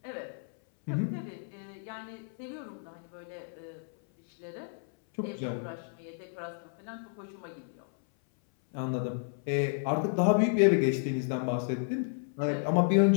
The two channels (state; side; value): silent; right; 57 dB below the other